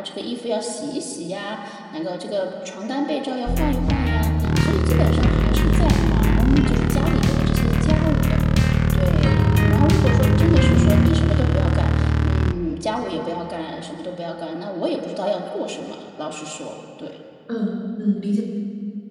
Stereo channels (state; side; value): identical; both; correlation 1.00